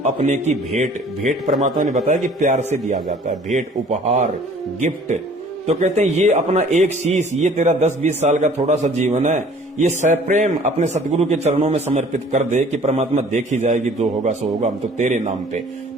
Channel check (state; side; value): normal; both; correlation 0.52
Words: अपने की भेंट। भेंट परमात्मा ने बताया कि प्यार से दिया जाता है, भेंट, उपहार, गिफ्ट। तो कहते हैं ये अपना एक शीश, ये तेरा 10-20 साल का थोड़ा सा जीवन है, ये सप्रेम अपने सतगुरु के चरणों में समर्पित कर दे कि परमात्मा देखी जाएगी, जो होगा सो होगा, हम तो तेरे नाम पे।